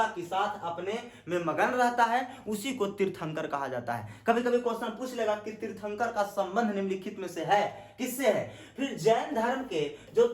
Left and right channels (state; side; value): identical; both; correlation 1.00